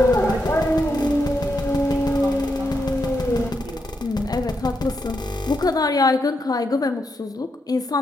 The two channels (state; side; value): normal; both; correlation 0.82